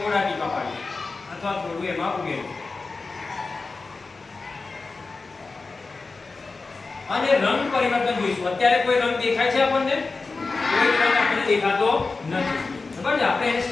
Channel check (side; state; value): right; quieter; 4.0 dB